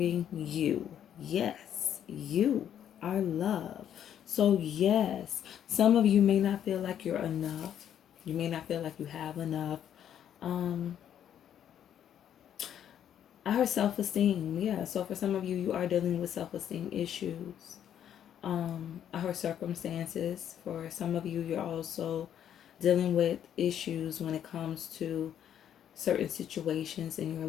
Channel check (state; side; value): quieter; right; 9.8 dB